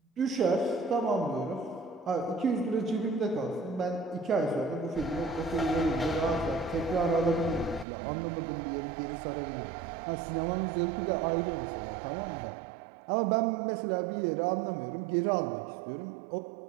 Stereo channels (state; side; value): drops out; left; at 7.9 s